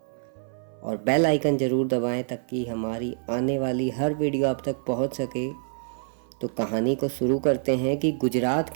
और बेल आइकन ज़रूर दबाएं ताकि हमारी आने वाली हर वीडियो आप तक पहुंच सके। तो कहानी को शुरू करते हैं कि गुजरात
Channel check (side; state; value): left; silent; 57 dB below the other